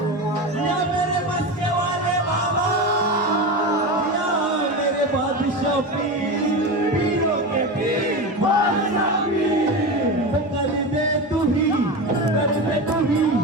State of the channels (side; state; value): both; normal; correlation 0.22